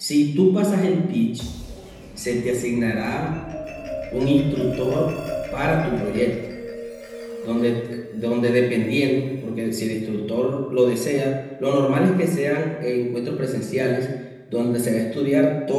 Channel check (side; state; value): both; identical; correlation 1.00